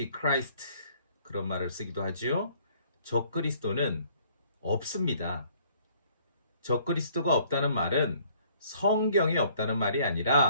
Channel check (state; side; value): inverted; both; correlation -0.60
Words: 그런 말을 쓰기도 하지요. 적그리스도는 없습니다. 적그리스도가 없다는 말은 성경에 없다는 말이